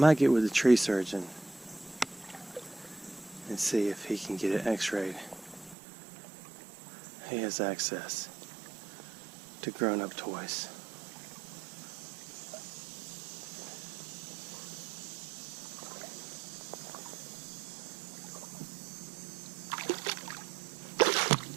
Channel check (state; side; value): drops out; left; at 5.8 s